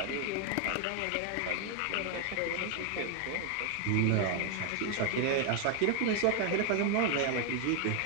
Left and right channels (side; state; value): both; different; correlation 0.01